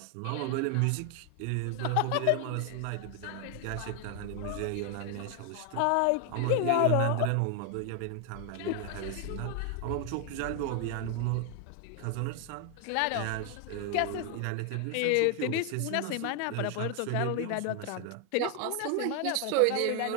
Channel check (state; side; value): different; both; correlation 0.00